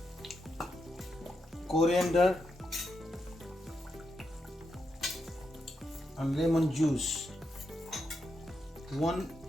coriander and lemon juice.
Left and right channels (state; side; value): normal; both; correlation 0.84